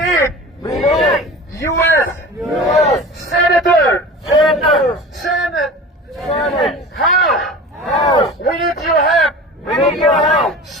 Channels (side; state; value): both; normal; correlation 0.36